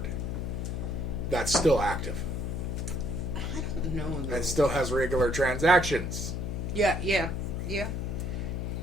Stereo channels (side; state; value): left; noise; hum, 3 dB below the sound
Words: that's still active I don't know. Though. and still has regular transactions. Yeah.